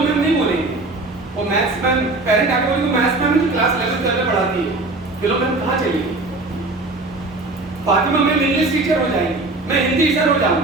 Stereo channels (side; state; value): left; quieter; 3.1 dB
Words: नहीं बोलेंगे, वो मैथ्स मैम, पेरेंट आके बोलेंगे मैथ्स मैम जो क्लास 11 में पढ़ाती है, फिलो मैम कहाँ चलेगी। फातिमा मैम इंग्लिश टीचर हो जाएंगी, मैं हिंदी टीचर हो